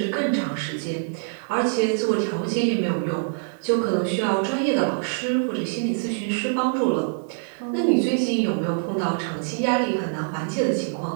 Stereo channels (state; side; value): silent; left; digital silence